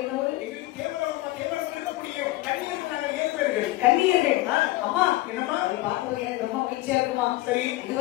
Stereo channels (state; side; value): quieter; right; 18.3 dB